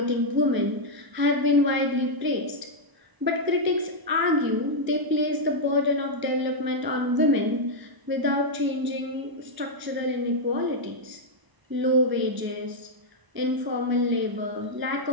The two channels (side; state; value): left; late; 1.0 ms